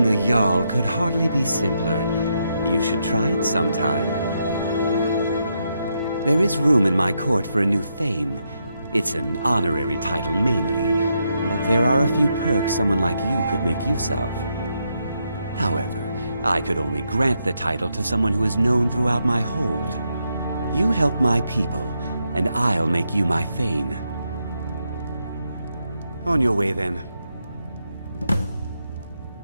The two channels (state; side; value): inverted; both; correlation -0.81